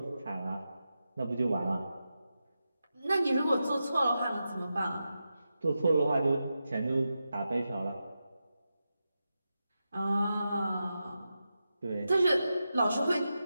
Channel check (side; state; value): both; inverted; correlation -0.90